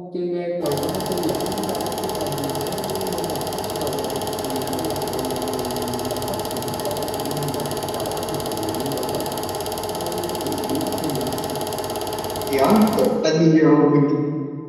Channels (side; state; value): both; identical; correlation 1.00